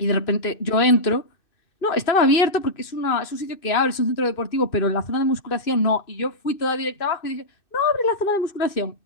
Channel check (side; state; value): right; late; 2.6 ms